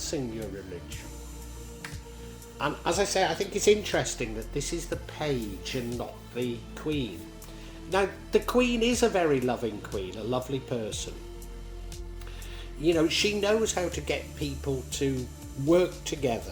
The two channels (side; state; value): both; identical; correlation 1.00